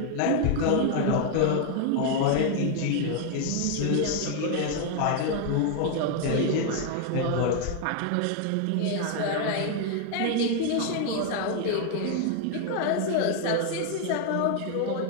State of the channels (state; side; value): different; both; correlation 0.00